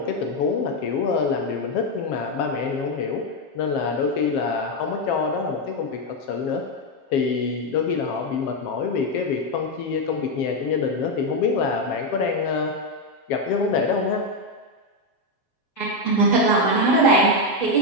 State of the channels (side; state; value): right; late; 7.4 ms